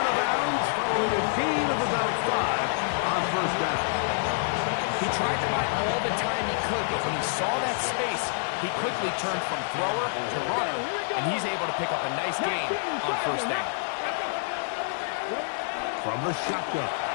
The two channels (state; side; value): silent; right; digital silence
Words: of bounds following a gain of about 5 on first down. He tried to buy all the time he could, but when he saw that space, he quickly turned from thrower to runner, and he's able to pick up a nice gain on first down. From the shotgun,